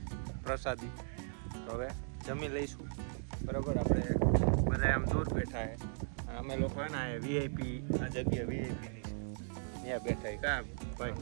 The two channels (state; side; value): silent; left; digital silence